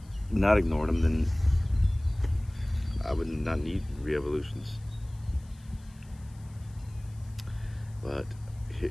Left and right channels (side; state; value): left; noise; hiss, 28 dB below the sound